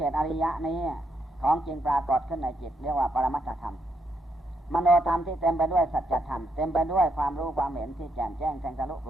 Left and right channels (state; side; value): normal; both; correlation 0.77